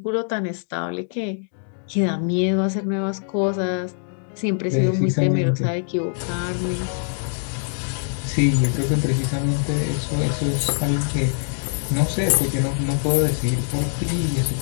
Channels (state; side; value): silent; right; digital silence